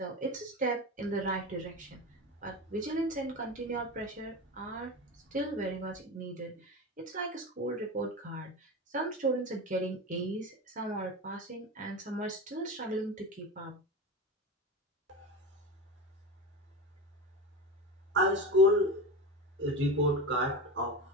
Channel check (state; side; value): normal; both; correlation 0.24